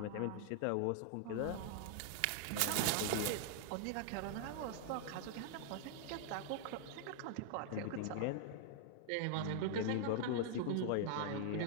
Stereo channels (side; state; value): both; different; correlation -0.01